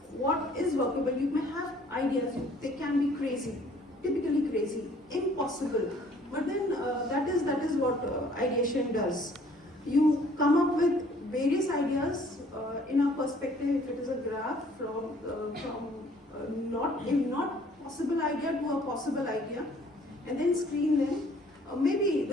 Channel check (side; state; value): both; normal; correlation 0.58